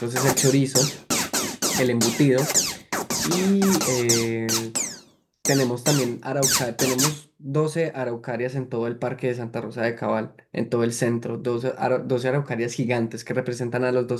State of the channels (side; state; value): both; identical; correlation 1.00